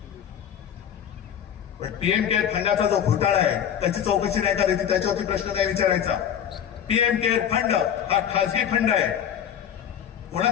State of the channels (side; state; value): right; quieter; 9.1 dB